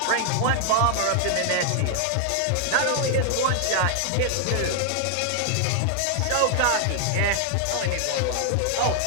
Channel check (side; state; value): both; different; correlation 0.00